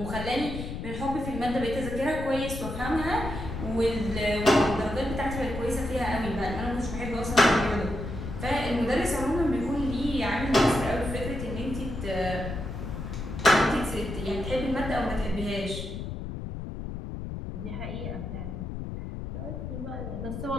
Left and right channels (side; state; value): left; noise; rumble, 7 dB below the sound